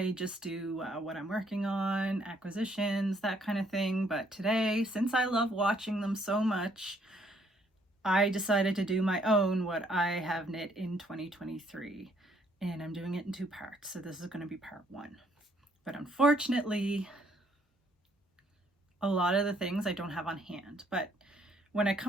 just do what I'm working on, acquisitions, that kind of thing, but today, since I love watching them so much, I decided to do my own what I have knit in 2023. And I'm doing it in two parts. So this is going to be part one. But unfortunately, a lot of the things I don't have on hand. But when I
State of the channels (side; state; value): both; normal; correlation 0.67